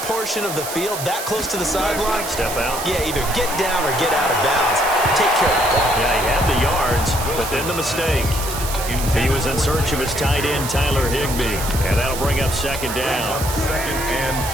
portion of the field, that close to the sideline, step out. Yeah, either get down or get out of bounds. Take care of the ball. Yeah, he had the yards, but then the mistake. He was in search of his tight end, Tyler Higbee. And that'll bring up second down. Second and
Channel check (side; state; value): right; noise; hiss, 7 dB below the sound